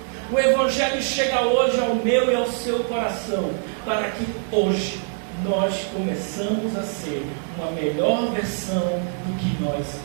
O Evangelho chega hoje ao meu e ao seu coração, para que hoje nós começamos a ser uma melhor versão do que nós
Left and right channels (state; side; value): silent; left; 58 dB below the other